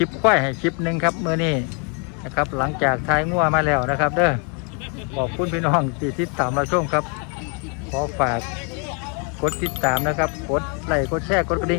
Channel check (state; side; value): quieter; right; 36.9 dB